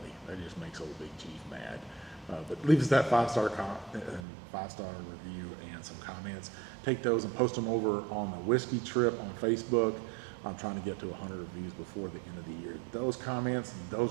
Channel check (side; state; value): left; drops out; at 4.2 s